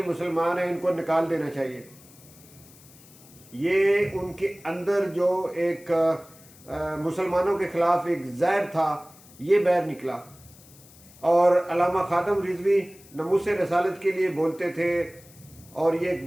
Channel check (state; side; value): noise; left; hiss, 24 dB below the sound